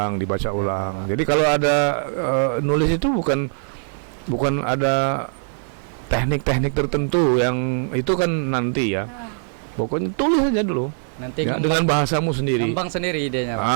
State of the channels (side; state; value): left; silent; 56 dB below the other